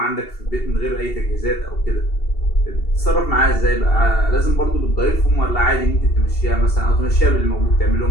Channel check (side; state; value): right; late; 2.7 ms